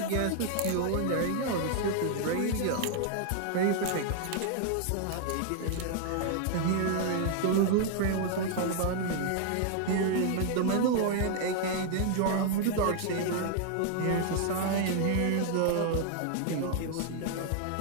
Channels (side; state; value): both; different; correlation 0.00